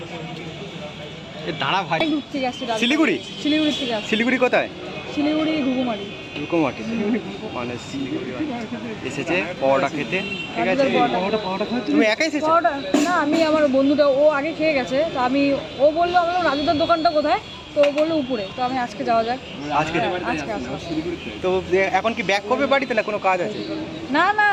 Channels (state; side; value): identical; both; correlation 1.00